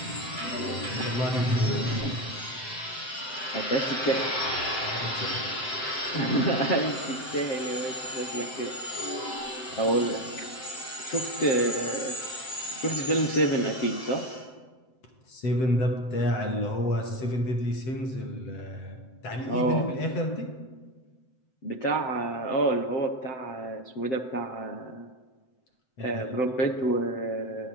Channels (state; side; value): late; right; 7.7 ms